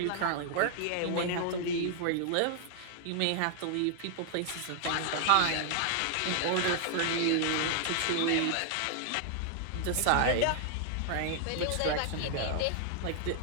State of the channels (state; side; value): different; both; correlation -0.01